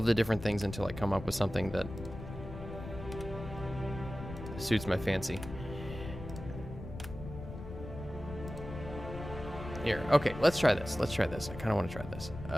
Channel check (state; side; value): noise; left; rumble, 10 dB below the sound